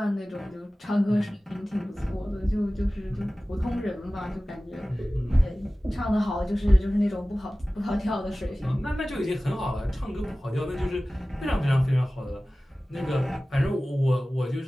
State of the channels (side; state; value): both; normal; correlation 0.97